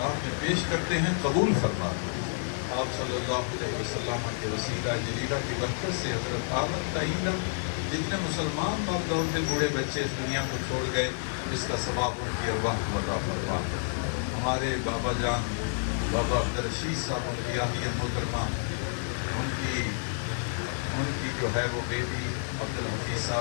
میں پیش کرتے ہیں قبول فرما دو آپ صلی اللہ علیہ وسلم کے وسیلہ جلیلہ کی برکت سے حضرت آدم تعین جتنے مسلمان مرد عورتیں بوڑھے بچے اس دنیا کو چھوڑ گئے اس کا ثواب ان کی ارواح کو عطا فرما ہمارے بابا جان بابا عبدالرشید صاحب ان کی آہیہ محترمہ ان کی جو ہے وہ بیٹی عبدالحفیظ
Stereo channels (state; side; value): silent; right; digital silence